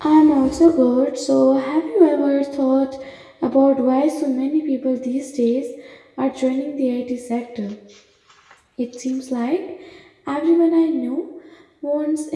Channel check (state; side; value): identical; both; correlation 1.00